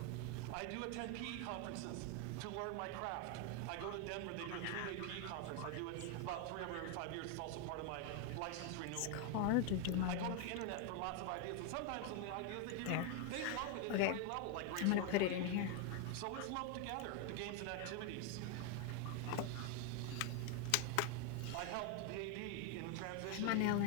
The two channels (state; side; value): different; both; correlation 0.01